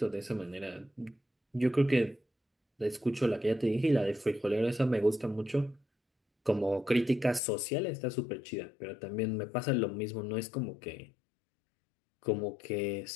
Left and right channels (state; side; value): drops out; right; at 7.4 s